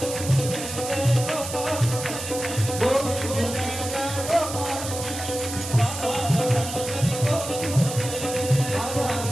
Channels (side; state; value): right; noise; hiss, 8 dB below the sound